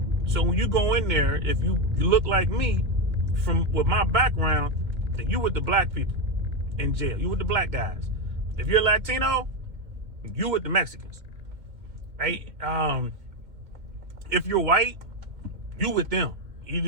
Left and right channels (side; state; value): left; late; 2.1 ms